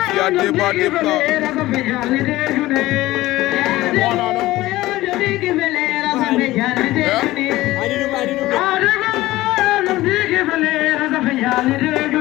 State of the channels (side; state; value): right; quieter; 17.4 dB